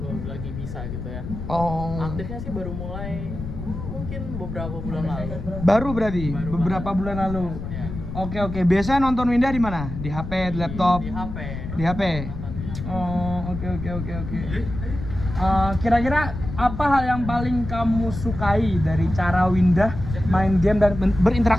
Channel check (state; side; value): noise; left; rumble, 7 dB below the sound